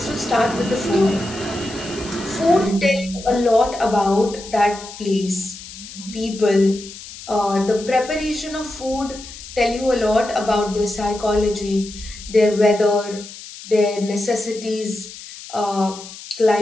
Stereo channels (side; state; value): left; noise; hiss, 14 dB below the sound